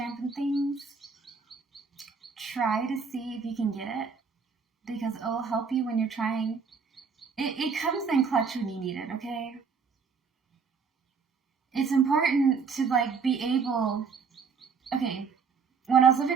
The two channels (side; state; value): left; quieter; 5.5 dB